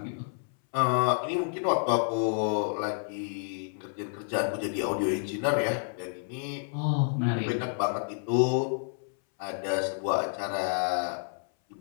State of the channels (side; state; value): right; silent; 58 dB below the other